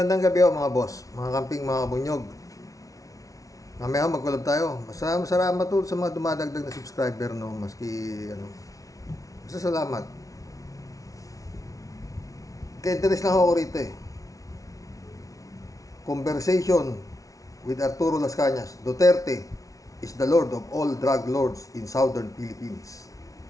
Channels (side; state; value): right; late; 0.17 ms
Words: gabi mga boss, mga kamping, mga bunyog. Mamaya mag-collab tayo. Salamat po sa mga dumadagdag na subscriber, no, maski ano. Basta salamat. Kaya interest lang ako rito eh. Conversation with Arturo Las Cañas. Duterte is the lord of all drug lords in southern Philippines.